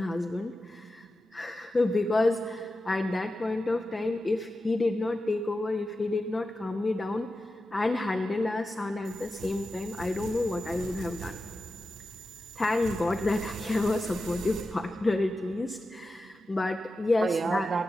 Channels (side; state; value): both; normal; correlation 0.92